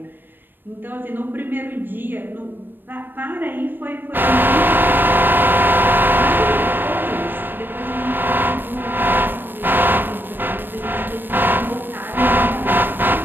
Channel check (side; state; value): left; late; 0.094 ms